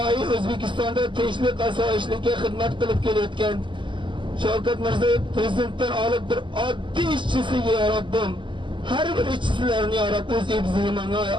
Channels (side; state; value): left; late; 0.24 ms